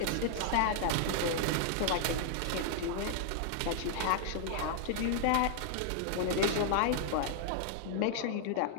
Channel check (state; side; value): different; both; correlation -0.01